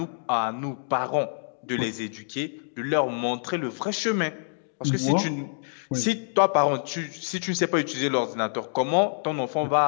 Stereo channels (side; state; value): right; silent; digital silence